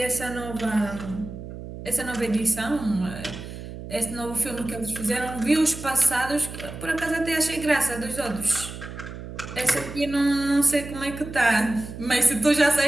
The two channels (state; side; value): noise; right; hum, 11 dB below the sound